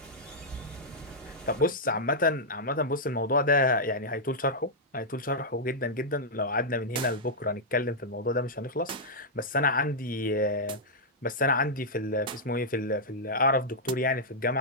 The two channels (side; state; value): both; normal; correlation -0.08